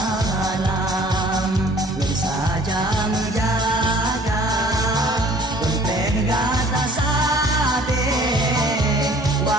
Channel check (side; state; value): both; normal; correlation 0.52